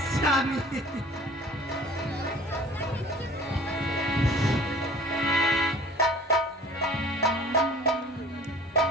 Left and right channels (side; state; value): both; normal; correlation 0.47